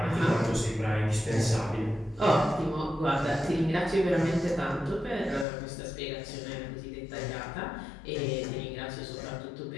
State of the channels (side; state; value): right; drops out; at 5.5 s